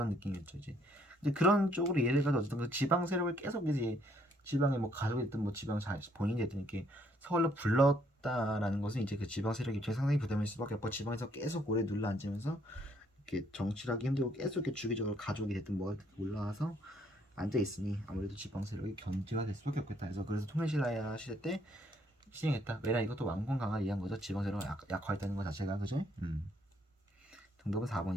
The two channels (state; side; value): normal; both; correlation 0.68